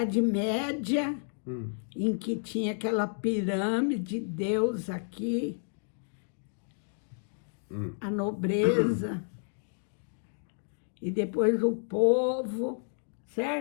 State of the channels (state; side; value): silent; right; digital silence